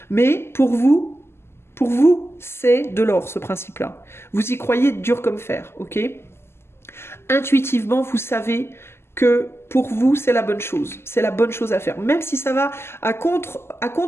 Mais pour vous, c'est de l'or ce principe-là. Vous y croyez dur comme fer, ok? Intuitivement, vous savez que pour vous, c'est la bonne chose. C'est la bonne chose à faire. Même si ça va à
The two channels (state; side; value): late; right; 0.12 ms